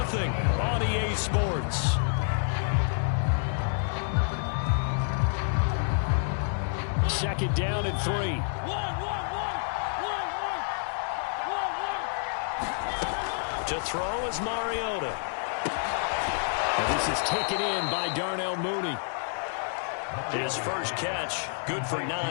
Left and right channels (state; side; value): silent; right; digital silence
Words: on EA Sports. Second down and 3. To throw is Mariota. And this is taken in by Darnell Mooney. His first catch, good for 9